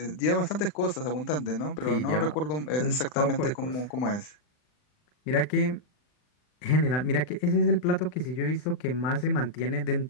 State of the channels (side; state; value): right; late; 39 ms